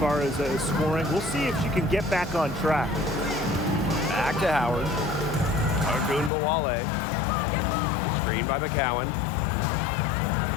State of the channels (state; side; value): drops out; right; at 6.3 s